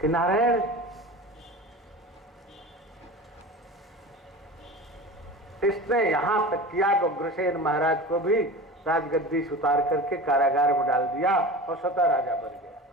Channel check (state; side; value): normal; both; correlation 0.33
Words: नारायण इसने यहां तक किया कि उग्रसेन महाराज को भी राजगद्दी से उतार करके कारागार में डाल दिया और स्वतः राजा बन गया।